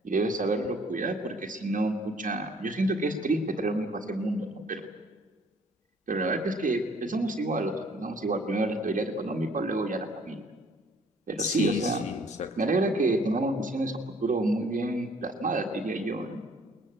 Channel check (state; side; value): normal; both; correlation 0.58